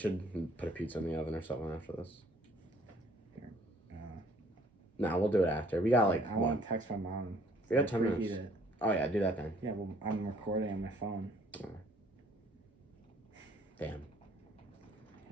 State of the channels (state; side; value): normal; both; correlation 0.60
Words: put a pizza in the oven or something after this. Nah, we'll do it after. We got like I want to text my mom. We got 10 Preheat minutes. it. Oh yeah, do that then. Yeah, well, I'm recording on my phone. Damn.